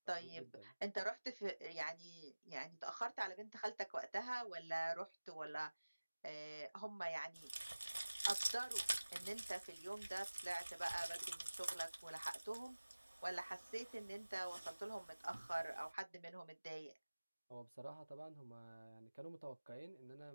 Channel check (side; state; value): both; inverted; correlation -1.00